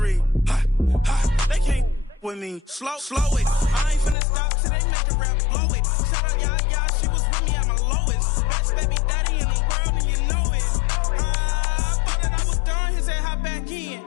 Ha, ha, they can't with me. Slow it. I ain't finna stop till they make the rap blow it. Shout out Yaya, she was with me at my lowest. Best baby daddy in the world and you know it. I thought that I was done, he said hop back in.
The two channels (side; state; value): right; drops out; at 4.2 s